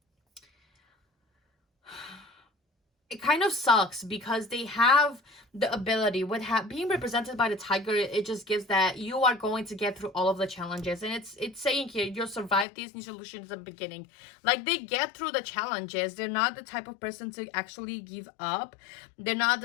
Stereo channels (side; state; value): right; drops out; at 12.7 s